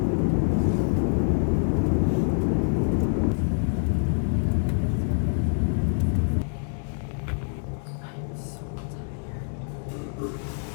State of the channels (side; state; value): right; silent; 61 dB below the other